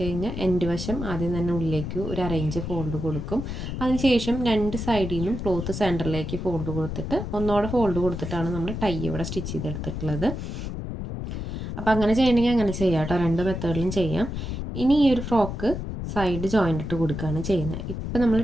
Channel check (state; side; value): noise; left; rumble, 5 dB below the sound